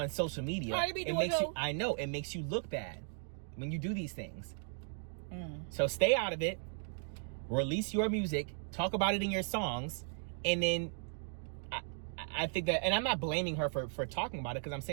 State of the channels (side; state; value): left; silent; 53 dB below the other